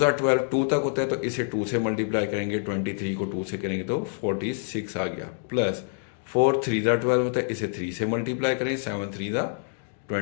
12, 2 तक होता है तो इसे 2 से मल्टीप्लाई करेंगे। 23 को 2 से करेंगे तो 46 आ गया। प्लस 4 3 ज़ा 12 होता है, इसे 3 से मल्टीप्लाई करें। 7 3 ज़ा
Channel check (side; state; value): right; silent; digital silence